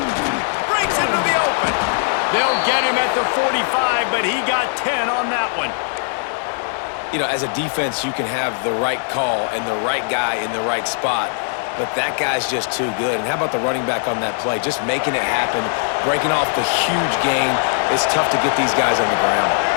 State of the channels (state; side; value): silent; right; 60 dB below the other